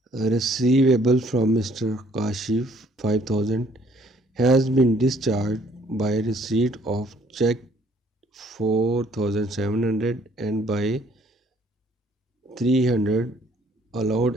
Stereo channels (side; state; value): both; normal; correlation 0.62